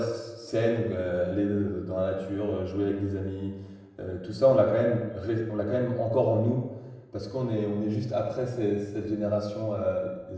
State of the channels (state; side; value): identical; both; correlation 1.00